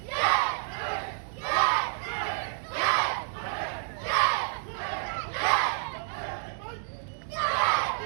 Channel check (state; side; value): silent; left; digital silence